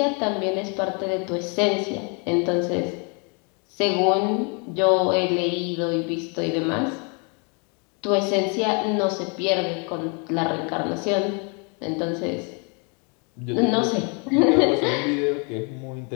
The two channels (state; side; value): quieter; right; 35.5 dB